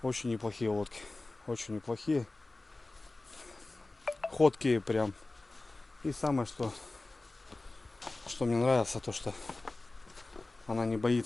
очень неплохие лодки. Очень неплохие. Ходкие прям. И самое, что мне нравится, то что она не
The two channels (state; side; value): quieter; right; 3.1 dB